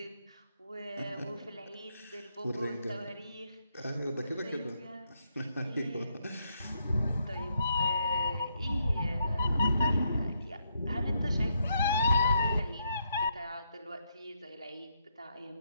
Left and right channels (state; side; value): inverted; both; correlation -0.77